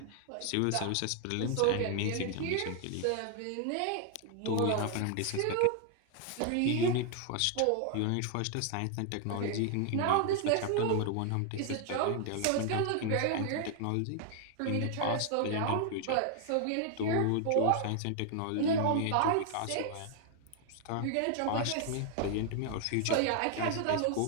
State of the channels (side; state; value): both; different; correlation 0.00